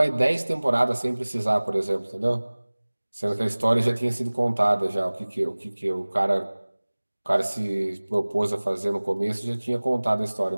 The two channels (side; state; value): both; inverted; correlation -1.00